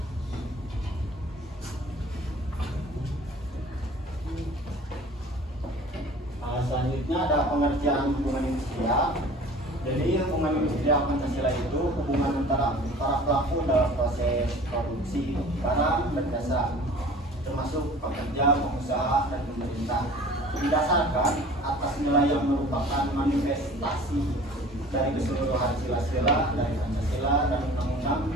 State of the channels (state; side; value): normal; both; correlation 0.45